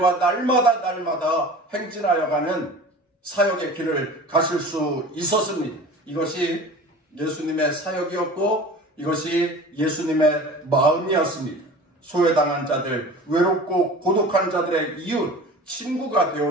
날마다 행진하여 가는 사역의 길을 가실 수 있었습니다. 이것이 예수님의 사역이었고 이것이 예수님의 마음이었습니다. 소외당한 자들, 외롭고 고독한 자들의 이웃, 친구가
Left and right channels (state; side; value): normal; both; correlation 0.40